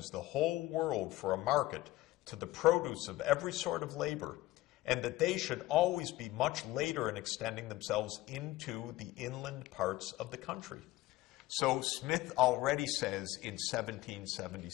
the whole world for a market to the produce of every sort of labor, and that they should always be much later in extending themselves into the inland parts of the country." So Smith already says in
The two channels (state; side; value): quieter; right; 17.1 dB